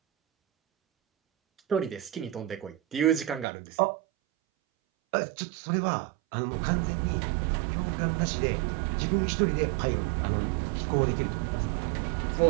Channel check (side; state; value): left; drops out; at 3.5 s